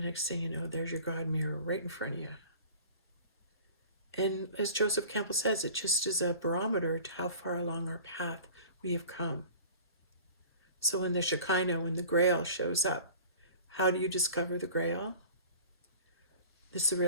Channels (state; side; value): inverted; both; correlation -0.43